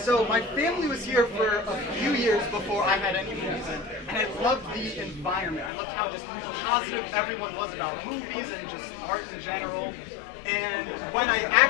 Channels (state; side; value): drops out; right; at 5.7 s